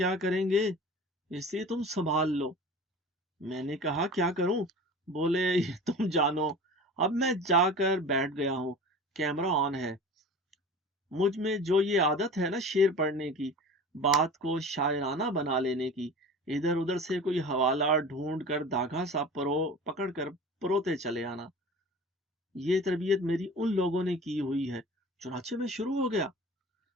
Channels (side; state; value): both; normal; correlation 0.37